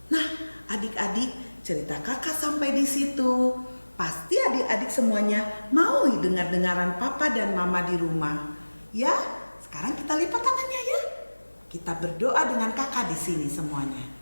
Nah adik-adik, cerita kakak sampai di situ. Pasti adik-adik semuanya mau dengar-dengaran papa dan mama di rumah. Ya, sekarang kita lipat tangannya ya. Kita berdoa dengan kakak di sini semuanya.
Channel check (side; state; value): both; inverted; correlation -1.00